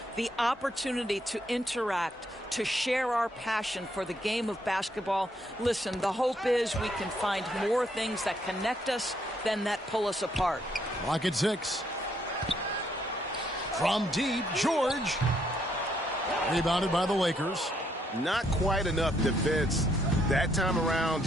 the opportunity to interact, to share our passion for the game of basketball. Listen, the hope is we can find more things that connect us than that pull us apart. Clock at 6. From deep, George. Rebounded by the Lakers. Not quite enough defense that time around.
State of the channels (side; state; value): both; normal; correlation 0.72